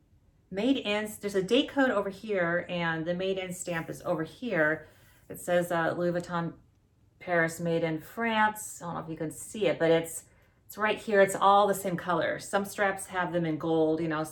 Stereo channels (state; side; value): identical; both; correlation 1.00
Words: made in, there's a date code over here, and the made in stamp is over here. It says Louis Vuitton Paris, made in France. I don't know if you can see it, but it's right here. It's all the same color. Some straps have them in gold,